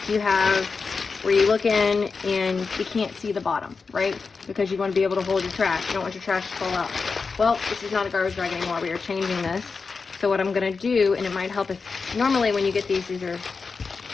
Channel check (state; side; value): quieter; right; 4.8 dB